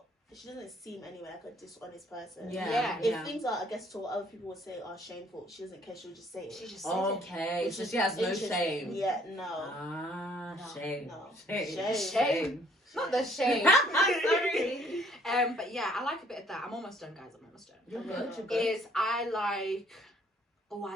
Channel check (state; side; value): normal; both; correlation 0.62